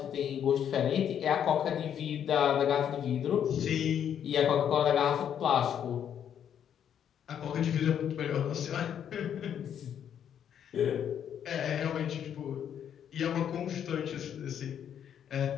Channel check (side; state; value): right; quieter; 9.1 dB